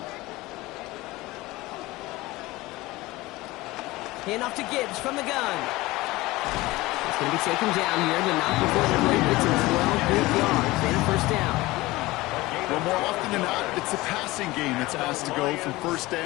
Hand off to Gibbs from the gun. It's going to be taken down here, but not before the play gets him 12 good yards and a 1st down. Well, more often than not, it's a passing game that's asked to go from 1st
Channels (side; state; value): right; quieter; 19.8 dB